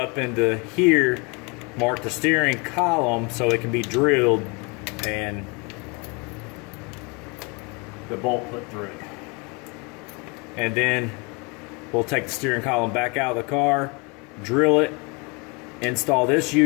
into here, mark the steering column so it can be drilled and the bolt put through it. And then we'll take the steering column back out of the car, drill it, install this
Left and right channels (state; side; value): quieter; right; 30.4 dB